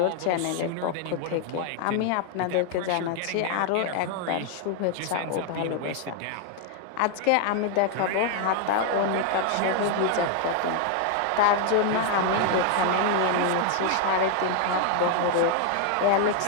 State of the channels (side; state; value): both; different; correlation 0.00